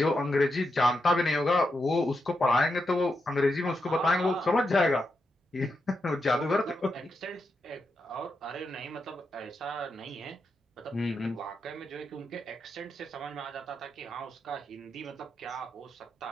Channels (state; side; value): normal; both; correlation 0.85